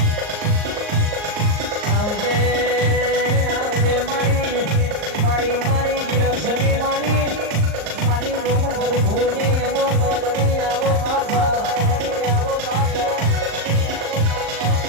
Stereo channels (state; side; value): late; left; 38 ms